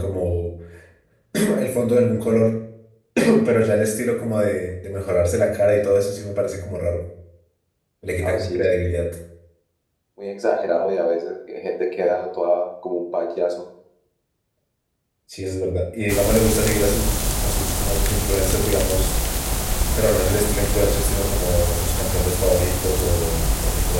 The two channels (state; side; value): identical; both; correlation 1.00